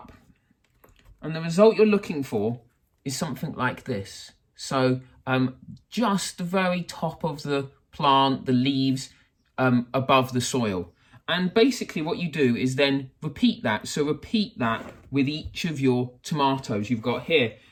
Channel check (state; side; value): identical; both; correlation 1.00